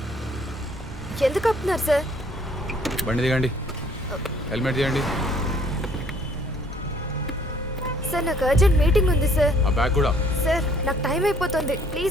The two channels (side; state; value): both; normal; correlation 0.60